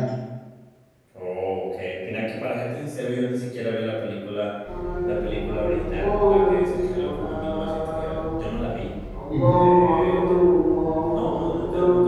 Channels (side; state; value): both; identical; correlation 1.00